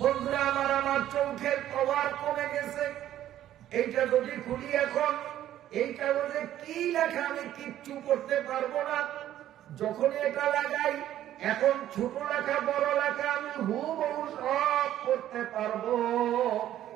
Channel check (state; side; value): quieter; left; 12.3 dB